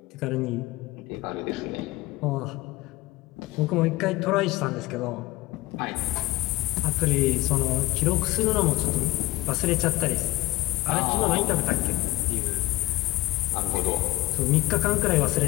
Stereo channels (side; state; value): right; quieter; 18.9 dB